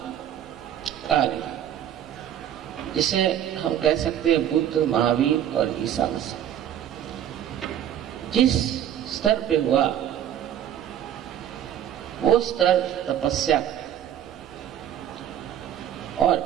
कार्य, जिसे हम कह सकते हैं बुद्ध, महावीर और ईसा मसीह, जिस स्तर पे हुआ वो स्तर तपस्या का, और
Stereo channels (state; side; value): quieter; left; 10.4 dB